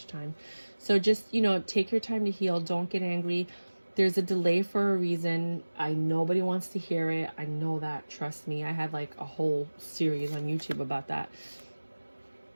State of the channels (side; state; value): both; inverted; correlation -1.00